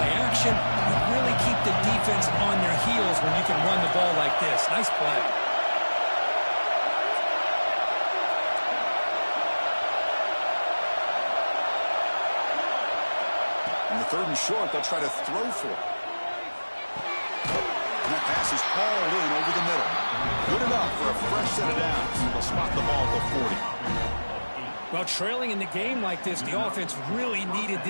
action. You really keep the defense on their heels when you can run the ball like this. Nice play. In the 3rd and short, they'll try to throw for it. And that pass is hauled in over the middle. Good enough for a fresh set of downs. They'll spot the ball at the 40. Well, trailing in the game like this, the offense really needed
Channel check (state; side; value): inverted; both; correlation -1.00